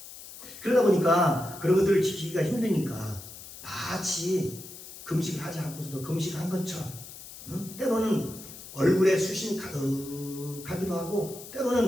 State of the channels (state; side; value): noise; left; hiss, 15 dB below the sound